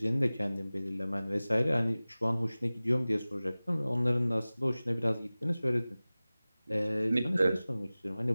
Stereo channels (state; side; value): inverted; both; correlation -0.98